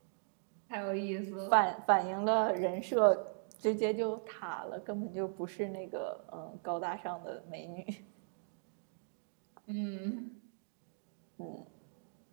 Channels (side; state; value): left; silent; digital silence